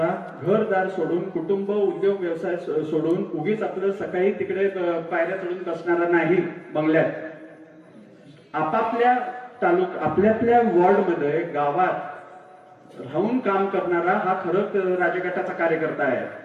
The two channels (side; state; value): both; identical; correlation 1.00